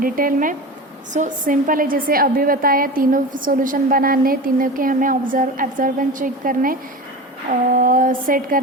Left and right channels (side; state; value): both; normal; correlation 0.29